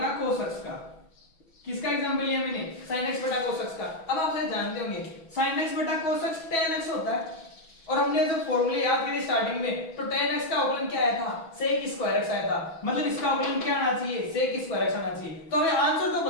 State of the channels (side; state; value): right; late; 6.1 ms